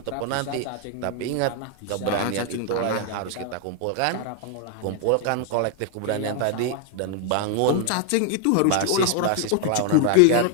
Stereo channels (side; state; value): both; different; correlation 0.00